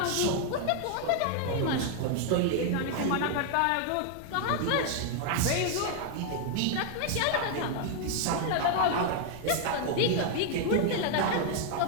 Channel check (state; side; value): different; both; correlation 0.00